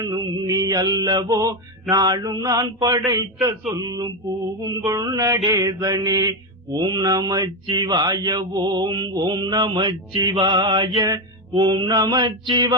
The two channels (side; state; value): both; normal; correlation 0.10